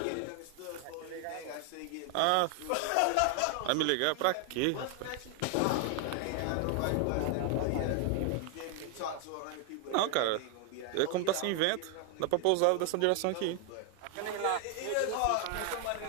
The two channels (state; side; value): different; both; correlation 0.00